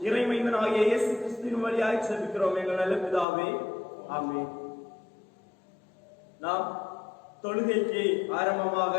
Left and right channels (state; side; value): drops out; right; at 3.2 s